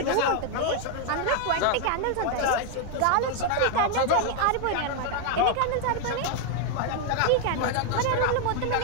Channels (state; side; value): different; both; correlation 0.00